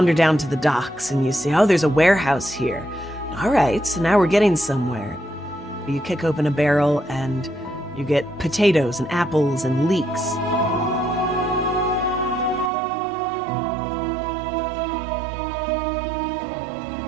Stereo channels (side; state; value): left; drops out; at 12.7 s